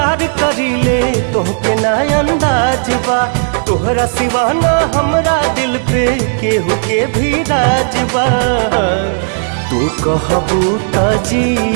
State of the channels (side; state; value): left; silent; digital silence